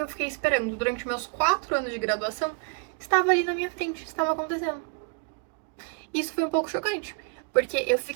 eu fiquei esperando durante meus 4 anos de graduação estava ali na minha frente, estava acontecendo. Isso foi um pouco chocante, porque eu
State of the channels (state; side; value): quieter; left; 34.2 dB